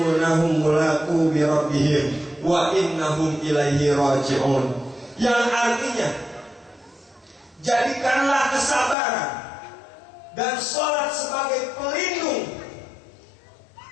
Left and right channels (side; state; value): right; drops out; at 9.0 s